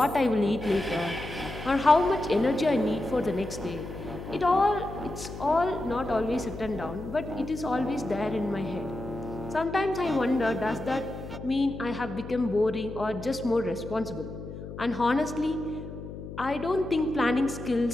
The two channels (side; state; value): left; noise; hum, 10 dB below the sound